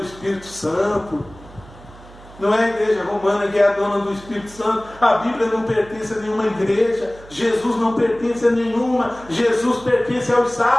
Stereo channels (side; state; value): right; noise; hum, 21 dB below the sound